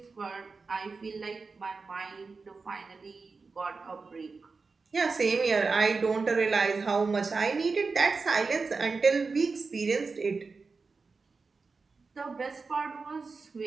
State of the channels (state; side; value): quieter; left; 4.4 dB